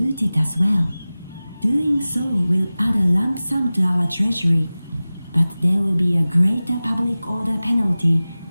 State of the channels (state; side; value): inverted; both; correlation -0.97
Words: it as well. Doing so will add a lump sum to our treasury, but there will be a greater public order penalty